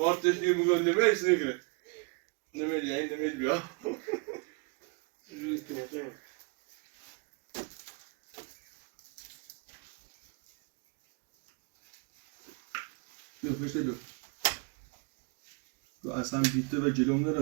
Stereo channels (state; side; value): quieter; left; 34.4 dB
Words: diye bugün deme hepsini göre. Demeli yani demeli ya. روی تونه Yok işte yok. Bu aslan bitti ve celomda